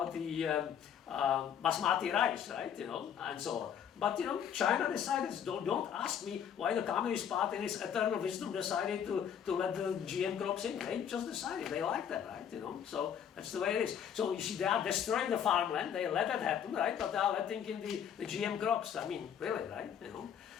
basmati rice, right? You know, and so on. But you know, China decided. Don't ask me why the Communist Party, in its eternal wisdom, decided to let the GM crops in. They just decided they like that, right? You know, so that's the way it is. So you see, they are destroying the farmland. They let that happen, right? But they are letting in the GM crops. I mean, really, right? You know,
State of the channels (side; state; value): right; quieter; 8.6 dB